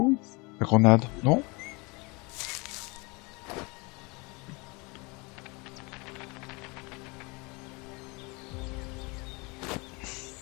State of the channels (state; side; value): quieter; right; 27.7 dB